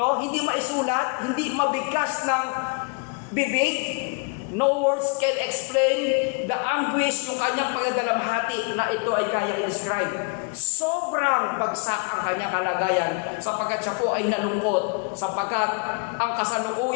hindi maisulat, hindi mabigkas ng bibig, no words can explain the anguish, yung kanyang pagdadalamhati na ito ay kayang i-describe. Sobrang bagsak ang kanyang kalagayan sapagkat siya po ay nalungkot, sapagkat ang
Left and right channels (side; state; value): right; quieter; 34.6 dB